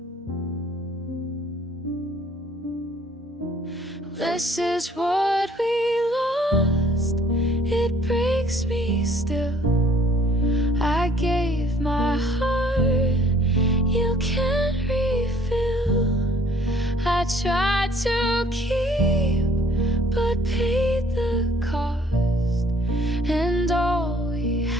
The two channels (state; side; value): normal; both; correlation 0.58